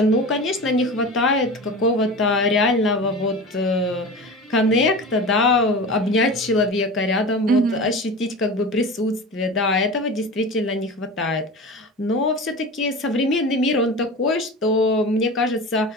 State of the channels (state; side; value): normal; both; correlation 0.31